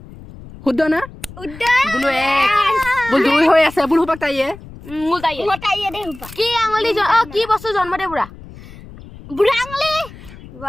শুদ্ধ না উদ্যান বোলো এক বোল দুই হৈ আছে বোল হুপাক তাইয়ে মোটাইয়ে দে কি আঙুলি কি বস্তু জন্ম দে বুঢ়া বুঢ়া আঙুলি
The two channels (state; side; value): noise; left; rumble, 17 dB below the sound